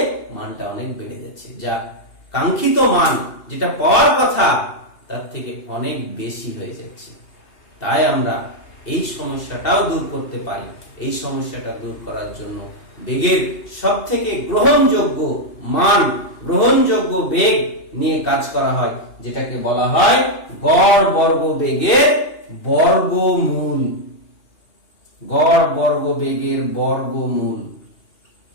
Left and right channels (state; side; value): late; right; 2.8 ms